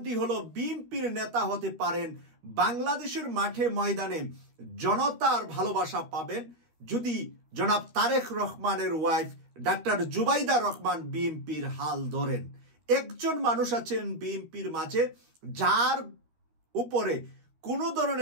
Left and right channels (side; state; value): left; late; 13 ms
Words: হলো, বিএনপির নেতা হতে পারেন, বাংলাদেশের মাঠে ময়দানে জনতার ভালোবাসা পাবেন যদি জনাব তারেক রহমানের ওয়াইফ ডাক্তার জুবাইদা রহমান বিএনপির হাল ধরেন। একজন মানুষ আছেন বিএনপির মাঝে যার উপরে কোনো